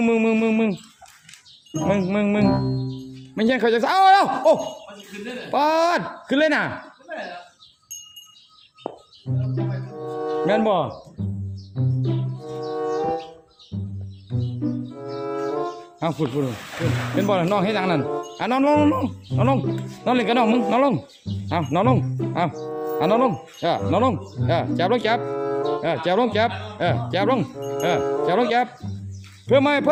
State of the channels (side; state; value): both; identical; correlation 1.00